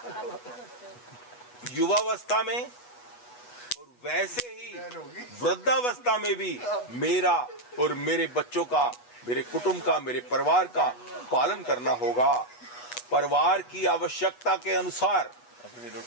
युवावस्था में और वैसे ही वृद्धावस्था में भी मेरा और मेरे बच्चों का, मेरे कुटुंब का, मेरे परिवार का पालन करना होगा। परिवार की आवश्यकता के अनुसार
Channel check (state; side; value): late; right; 8.2 ms